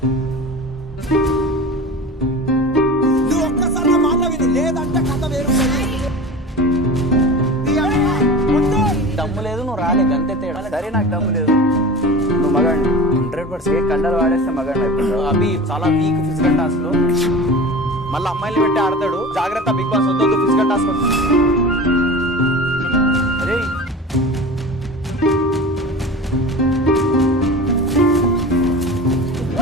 నువ్వు ఒక్కసారి మాట విను, లేదంటే కథ వేరు. దమ్ము లేదు, నువ్వు రాలే, గంతే తేడా. సరే నాకు దమ్ము లేదు, నువ్వు మగాడి 100% కండలు వాడేస్తే మగాడి అయిపోతావు. అవి చాలా వీక్ ఫిజికల్ టాస్క్ లో మళ్ళీ అమ్మాయిలు పెట్టి ఆడతాడు. జాగ్రత్త బిగ్ బాస్, వద్దు ఫిజికల్ టాస్క్. అరే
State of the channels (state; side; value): normal; both; correlation 0.34